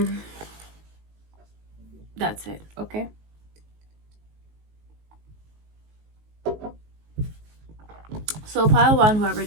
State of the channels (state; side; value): late; left; 19 ms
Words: That's it. Okay. So pile one, whoever